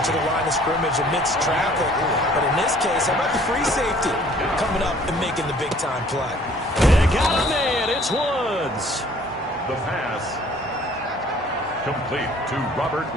the line of scrimmage amidst traffic. But in this case, how about the free safety coming up and making the big-time play? They got him in. It's Woods. The pass complete to Robert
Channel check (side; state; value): both; normal; correlation 0.55